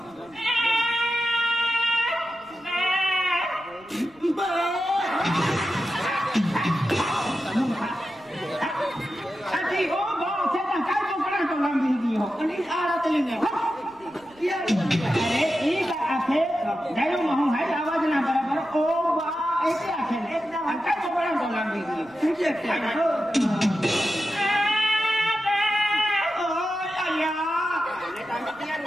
आवाज ना बराबर ओ बा ऐसे आखे एकदम काय चोपडा बोला मी तुझे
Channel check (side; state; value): right; noise; rumble, 30 dB below the sound